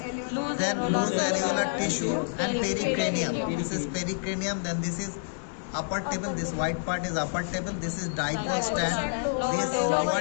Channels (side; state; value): right; silent; digital silence